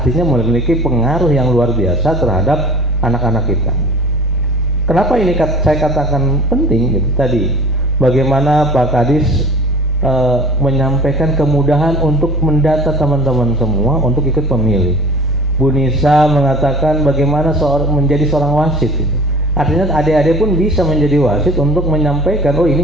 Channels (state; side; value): normal; both; correlation 0.43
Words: memiliki pengaruh yang luar biasa terhadap anak-anak kita. Kenapa ini saya katakan penting gitu tadi? Bagaimana Pak Kadis menyampaikan kemudahan untuk mendata teman-teman semua untuk ikut pemilih. Bu Nisa mengatakan bagaimana menjadi seorang wasit gitu. Artinya adik-adik pun bisa menjadi wasit untuk menyampaikan, oh